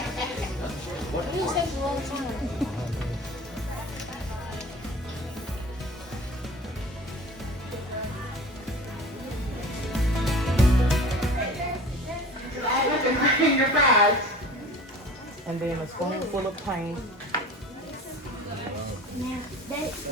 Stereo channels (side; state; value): both; normal; correlation 0.41